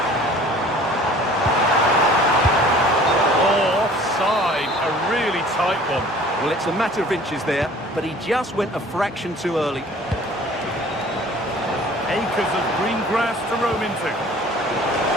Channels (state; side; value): normal; both; correlation 0.49